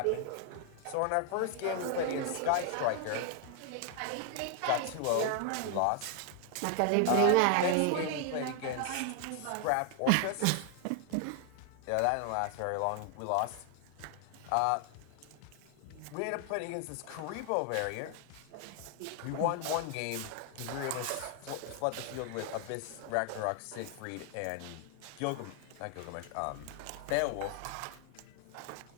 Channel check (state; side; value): different; both; correlation 0.00